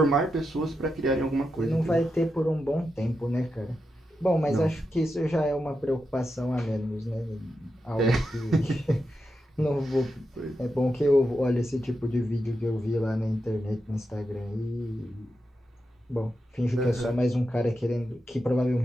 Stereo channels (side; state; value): both; normal; correlation 0.87